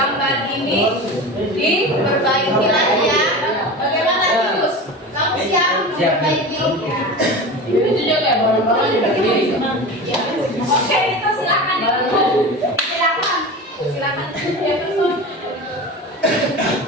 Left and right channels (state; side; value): normal; both; correlation 0.30